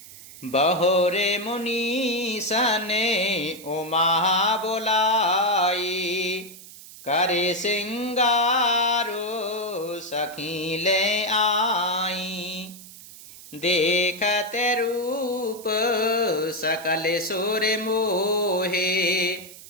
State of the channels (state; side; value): noise; right; hiss, 17 dB below the sound